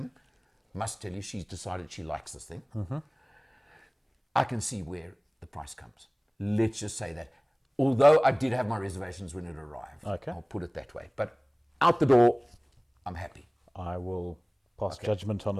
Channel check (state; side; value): identical; both; correlation 1.00